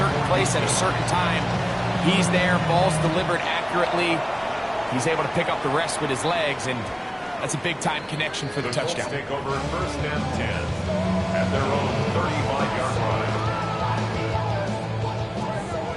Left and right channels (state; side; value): identical; both; correlation 1.00